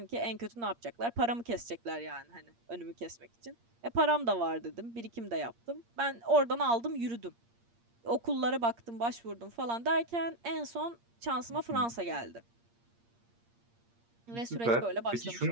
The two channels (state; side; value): late; left; 8.6 ms